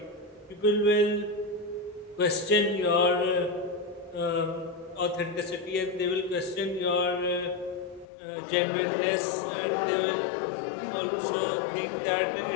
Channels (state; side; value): drops out; right; at 8.1 s